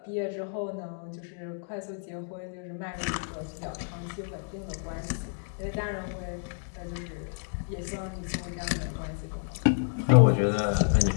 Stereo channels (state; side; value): silent; right; 58 dB below the other